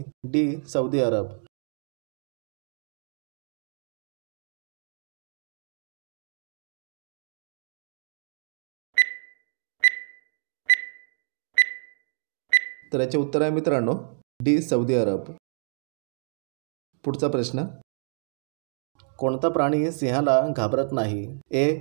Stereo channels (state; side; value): silent; left; digital silence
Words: D. Saudi Arab. तर याचे उत्तर आहे मित्रांनो डी सौदी अरब. पुढचा प्रश्न, कोणता प्राणी सिंहाला घाबरत नाही?